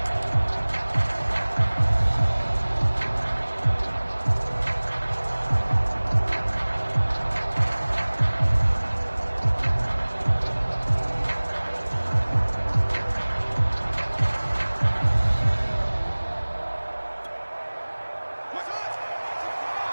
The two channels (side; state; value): both; inverted; correlation -1.00